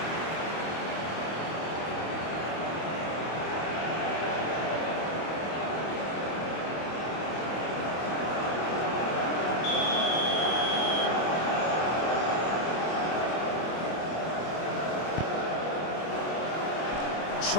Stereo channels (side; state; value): right; late; 25 ms